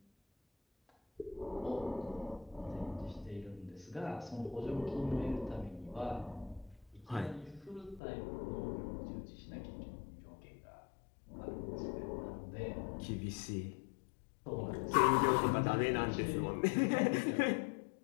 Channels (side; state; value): right; drops out; at 8.0 s